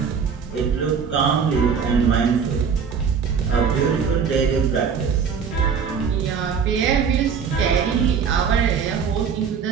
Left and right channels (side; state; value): left; quieter; 6.5 dB